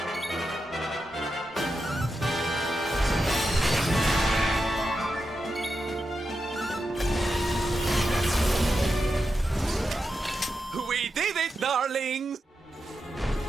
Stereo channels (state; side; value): normal; both; correlation 0.88